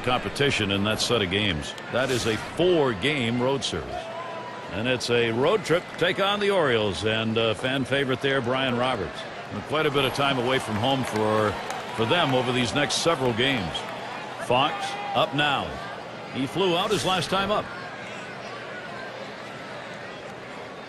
competition in that set of games. That is a 4-game road series. And it's a road trip to take on the Orioles and fan favorite there, Brian Roberts. And quite a bit of time away from home for them over these next several games. Fox up now. He flew out his last time up.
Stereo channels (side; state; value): both; identical; correlation 1.00